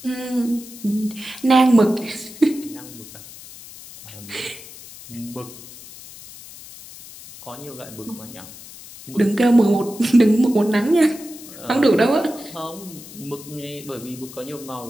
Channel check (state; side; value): noise; left; hiss, 17 dB below the sound